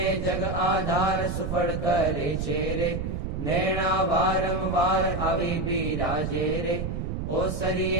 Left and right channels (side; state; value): right; noise; rumble, 3 dB below the sound